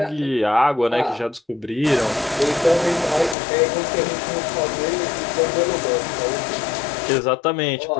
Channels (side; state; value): right; drops out; at 3.4 s